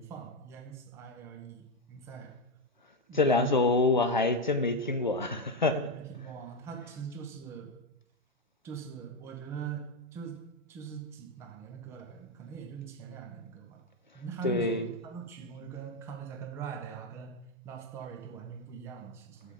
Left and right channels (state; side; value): normal; both; correlation 0.09